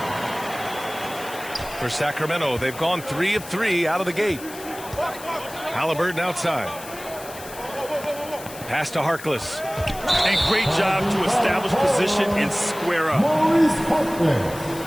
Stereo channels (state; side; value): noise; left; hiss, 15 dB below the sound